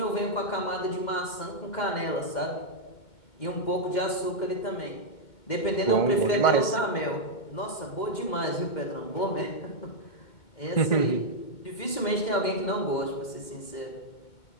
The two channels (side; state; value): right; late; 2.2 ms